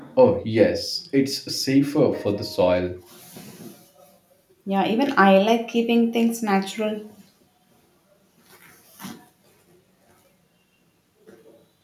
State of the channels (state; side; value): identical; both; correlation 1.00